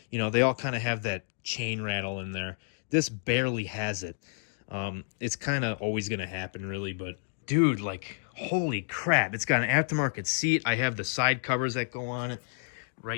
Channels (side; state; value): right; silent; digital silence